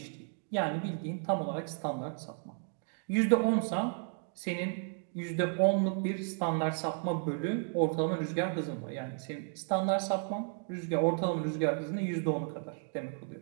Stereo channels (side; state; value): left; silent; 55 dB below the other